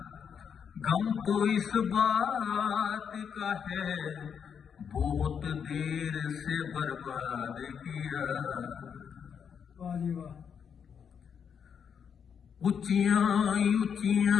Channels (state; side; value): quieter; right; 7.3 dB